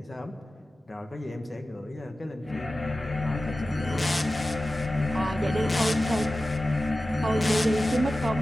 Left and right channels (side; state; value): both; normal; correlation 0.95